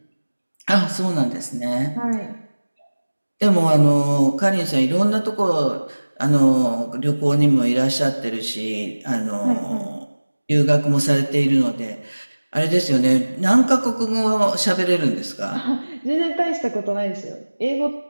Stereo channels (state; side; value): inverted; both; correlation -1.00